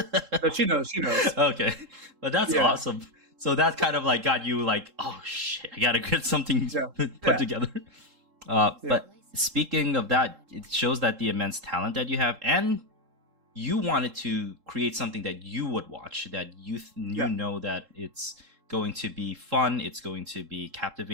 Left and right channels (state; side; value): late; left; 3.7 ms